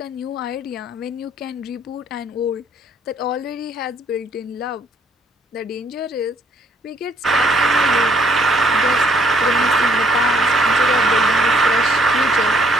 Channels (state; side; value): normal; both; correlation 0.65